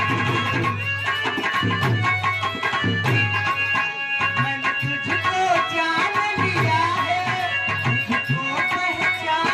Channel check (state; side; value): identical; both; correlation 1.00